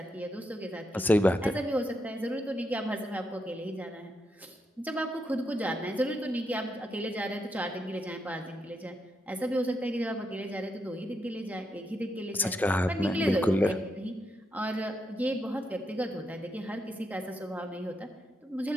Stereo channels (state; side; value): normal; both; correlation 0.82